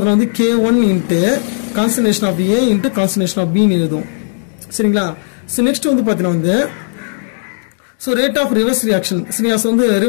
வந்து K1 into concentration of A into concentration of பின்னு எழுதும் சரிங்களா ஸோ நெக்ஸ்ட் வந்து பார்த்தீங்கன்னா வந்து so rate of reverse reaction சரியா ஸோ வந்து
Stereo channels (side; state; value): right; silent; digital silence